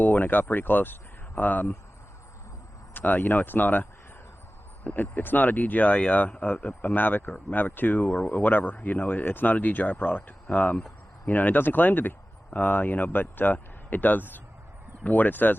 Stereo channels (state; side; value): normal; both; correlation 0.96